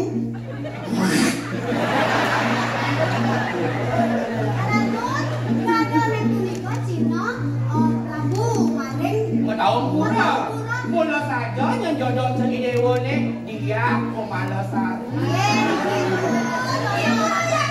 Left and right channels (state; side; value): identical; both; correlation 1.00